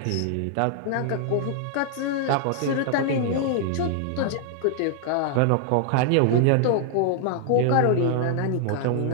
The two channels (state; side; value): different; both; correlation -0.01